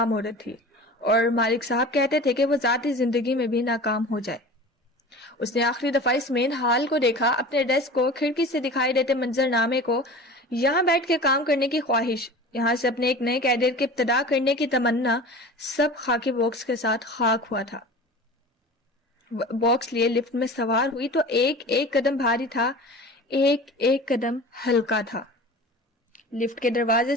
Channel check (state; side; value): normal; both; correlation 0.37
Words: عورت تھی اور مالک صاحب کہتے تھے کہ وہ ذاتی زندگی میں بھی ناکام ہو جائے. اس نے آخری دفعہ اس مین ہال کو دیکھا, اپنے ڈیسک کو, کھڑکی سے دکھائی دیتے منظر نامے کو. یہاں بیٹھ کے کام کرنے کی خواہش، یہاں سے اپنے ایک نئے کیریئر کی ابتدا کرنے کی تمنا، سب خاکی باکس کے ساتھ خاک ہوا تھا۔ باکس لیے لفٹ میں سوار ہوئی تو ایک ایک قدم بھاری تھا، ایک ایک قدم ہلکا تھا۔ لفٹ کے دروازے